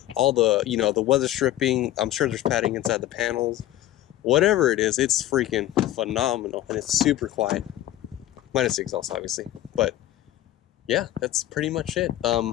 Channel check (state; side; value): quieter; right; 14.0 dB